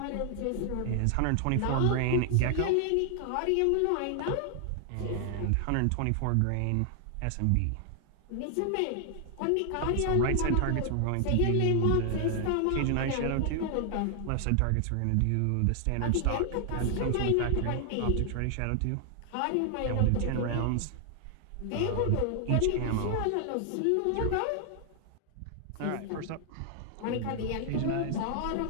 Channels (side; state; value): both; different; correlation 0.00